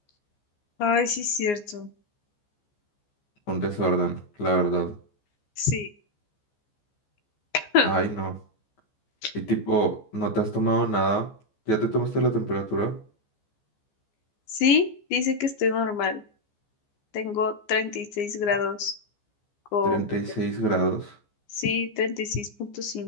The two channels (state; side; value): late; right; 14 ms